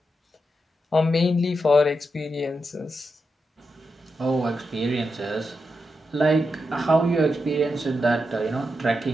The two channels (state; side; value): normal; both; correlation 0.86